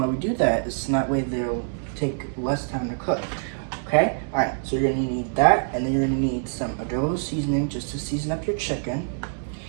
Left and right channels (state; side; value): silent; left; digital silence